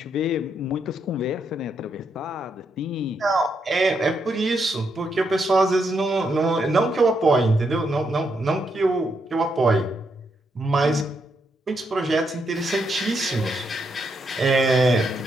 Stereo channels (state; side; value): normal; both; correlation 0.79